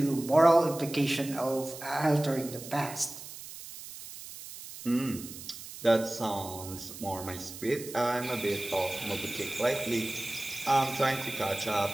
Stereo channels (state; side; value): noise; right; hiss, 13 dB below the sound